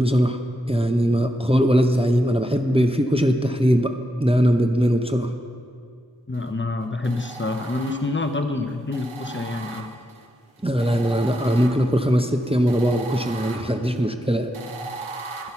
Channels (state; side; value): normal; both; correlation 0.84